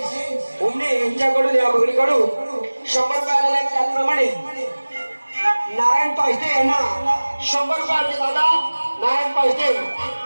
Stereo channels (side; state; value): both; inverted; correlation -1.00